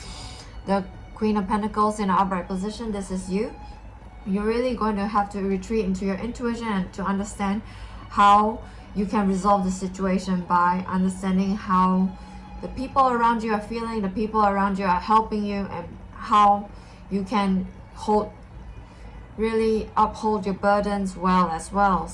The Queen of Pentacles in an upright position, this is you. You're really going to have to retreat into your intuition and to understand how you can resolve the situation by understanding how the people around you are feeling, the people around you are helping you, and how you can really uphold your burdens well as well.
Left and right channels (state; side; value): identical; both; correlation 1.00